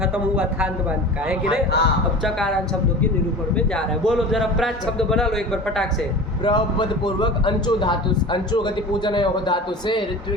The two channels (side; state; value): both; normal; correlation 0.35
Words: खत्म हुआ थांत बांत का, है कि नहीं। अब चकारांत शब्दों के निरूपण में जा रहा है। बोलो जरा प्राच शब्द बना लो एक बार फटाक से। प्रपद पूर्वक अंचो धातु, अंचो गति पूजन योग धातु से